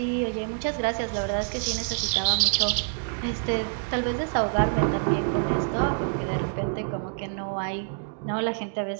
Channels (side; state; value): left; silent; digital silence